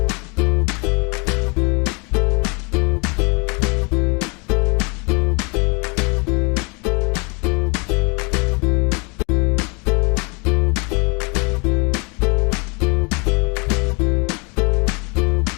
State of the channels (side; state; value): right; quieter; 31.7 dB